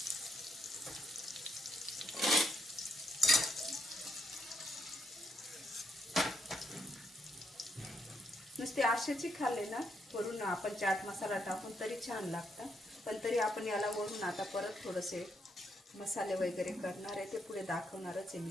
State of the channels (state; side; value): normal; both; correlation 0.77